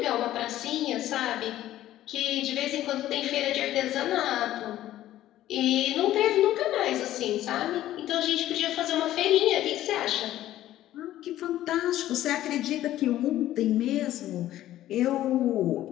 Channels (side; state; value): right; quieter; 13.7 dB